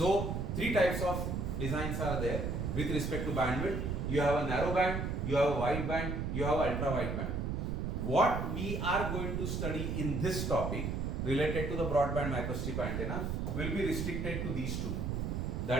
three types of designs are there with respect to bandwidth. You have a narrow band, you have a wide band, you have ultra wide band. What we are going to study in this topic related to the broadband microstrip antenna will be restricted to these two.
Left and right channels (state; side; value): noise; right; rumble, 1 dB below the sound